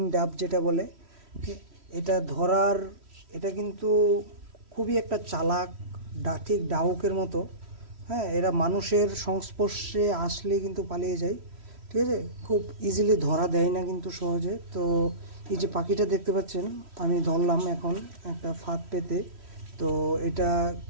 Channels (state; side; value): late; left; 3.1 ms